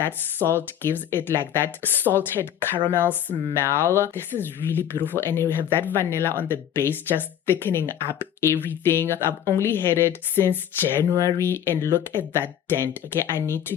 salt gives it like that salted caramel smell. This is really beautiful, and you have that vanilla on the base just thickening up everything. I've only had it since January and look at that dent. Okay, I need to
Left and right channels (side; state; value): right; quieter; 10.0 dB